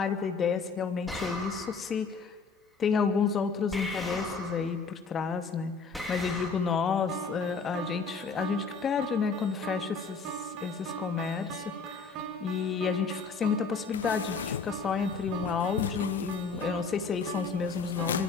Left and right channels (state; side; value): quieter; right; 4.8 dB